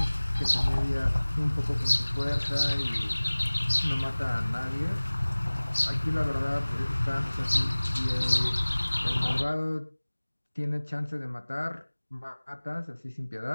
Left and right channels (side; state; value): both; inverted; correlation -1.00